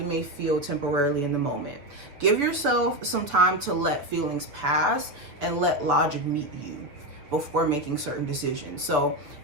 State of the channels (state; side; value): late; left; 7.2 ms